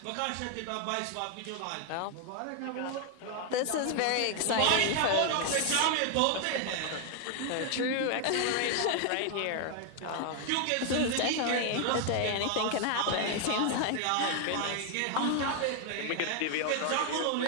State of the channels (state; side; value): different; both; correlation 0.00